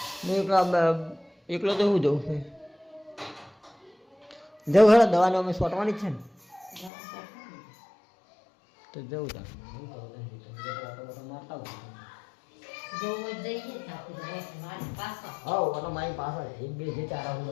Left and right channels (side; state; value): right; drops out; at 6.9 s